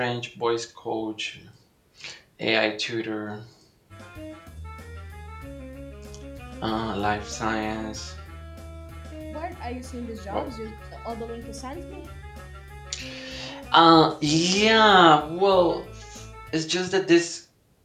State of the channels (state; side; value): identical; both; correlation 1.00